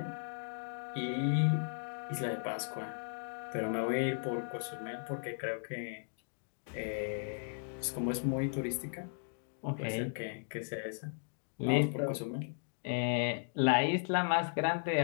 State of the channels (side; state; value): right; silent; digital silence